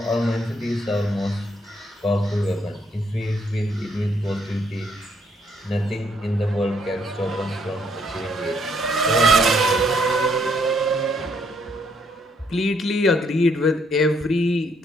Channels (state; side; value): normal; both; correlation 0.70